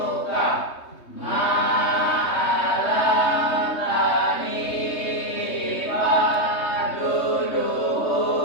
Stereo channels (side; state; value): right; late; 3.2 ms